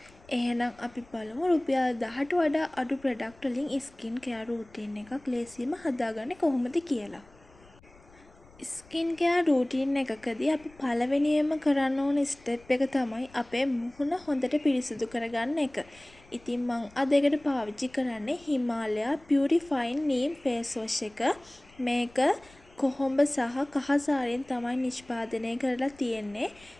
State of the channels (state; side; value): noise; left; rumble, 26 dB below the sound